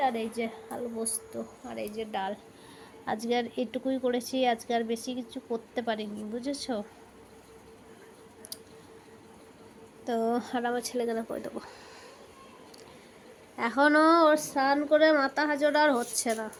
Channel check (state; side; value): identical; both; correlation 1.00